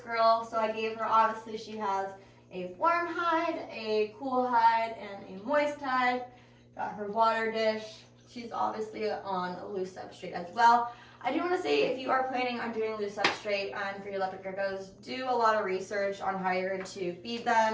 so I gave her, obviously she has a warm hide, a cool hide, and a moist hide. Got her water dish. She's obviously on a loose substrate as well. I do want to say, if you are planning on doing loose substrate for your leopard geckos, do a lot of research on how you're going to feed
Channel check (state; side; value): identical; both; correlation 1.00